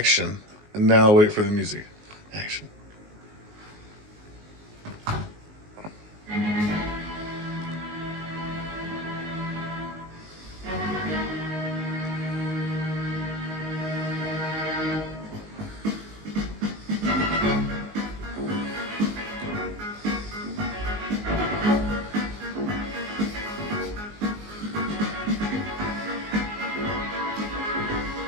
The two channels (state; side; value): late; left; 19 ms